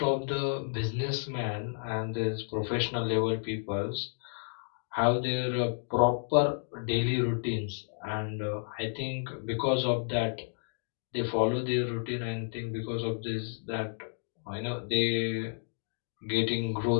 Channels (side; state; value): right; silent; digital silence